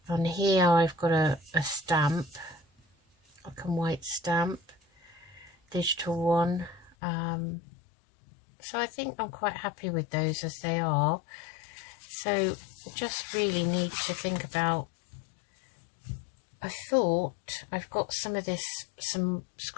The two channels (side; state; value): right; drops out; at 7.0 s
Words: On here I've got a stamp, black and white stamp, digital one. So I think I'm quite happy with those as they are. So just really need to think about, I thought I've got some of this, some